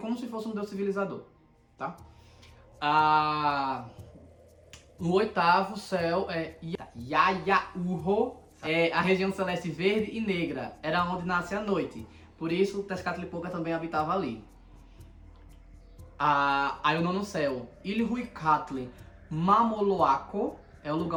se fosse um deus civilizador, tá? O oitavo céu é Yayaurro, a região celeste verde e negra, era onde nasce a noite. Por isso, Tezcatlipoca também habitava ali. Aí o nono céu, Ilhuicatli Mamoloaco, é o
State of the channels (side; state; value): both; identical; correlation 1.00